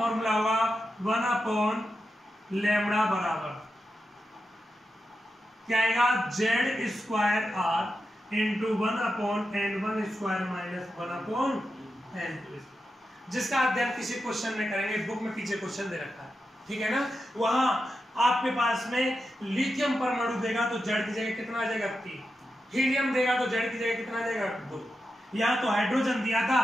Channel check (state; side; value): normal; both; correlation 0.89